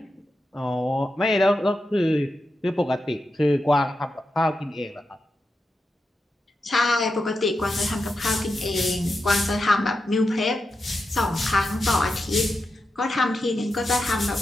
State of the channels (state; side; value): normal; both; correlation 0.89